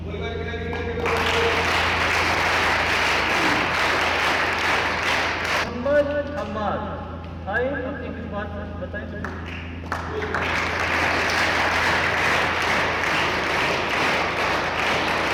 मोहम्मद हमाद आए, अपनी कुछ बात बताएं।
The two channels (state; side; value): identical; both; correlation 1.00